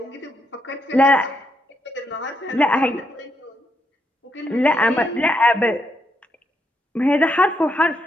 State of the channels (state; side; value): normal; both; correlation 0.79